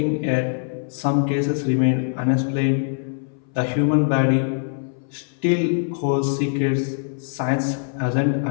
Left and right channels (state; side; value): silent; right; 60 dB below the other